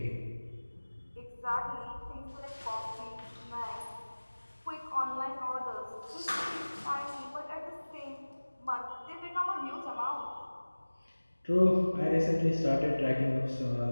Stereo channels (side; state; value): both; inverted; correlation -1.00